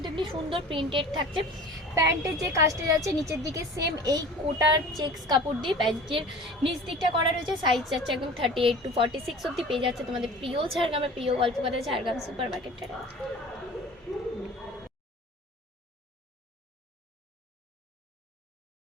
এমনি সুন্দর প্রিন্টেড থাকছে। প্যান্টের যে কাজটা যাচ্ছে নিচের দিকে সেম এই কোটার চেক্স কাপড় দিয়ে প্যান্টের নিচ দিকটা করা রয়েছে। সাইজ যাচ্ছে একদম 38 to 46 অব্দি পেয়ে যাচ্ছে তোমাদের প্রিয় ঝাড়গ্রামের প্রিয় গল্পকথা ঝাড়গ্রাম সুপার মার্কেটটা।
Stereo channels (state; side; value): normal; both; correlation 0.41